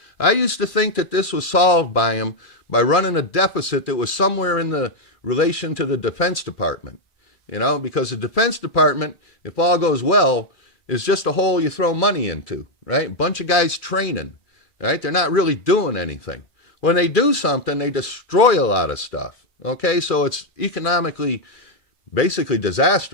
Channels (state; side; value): late; right; 2.4 ms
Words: I used to think that this was solved by him by running a deficit that was somewhere in the relation to the Defense Department, because the Defense Department, if all goes well, is just a hole you throw money into, right? A bunch of guys training, right? They're not really doing anything. When they do something, they destroy a lot of stuff, okay? So it's economically basically